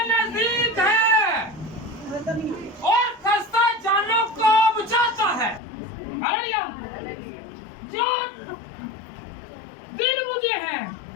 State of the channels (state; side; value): drops out; right; at 5.6 s